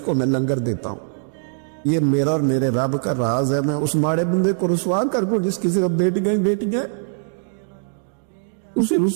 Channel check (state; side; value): silent; left; digital silence